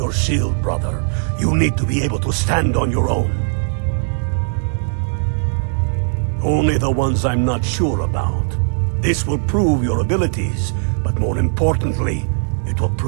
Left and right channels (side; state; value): left; silent; digital silence